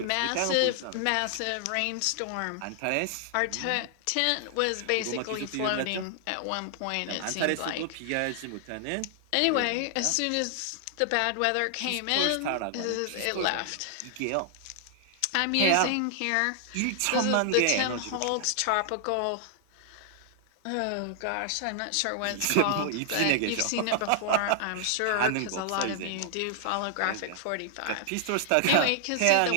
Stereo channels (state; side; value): different; both; correlation -0.01